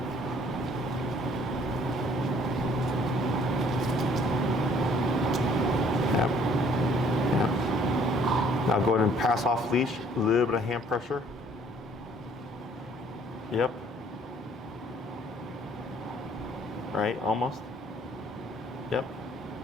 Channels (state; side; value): normal; both; correlation 0.59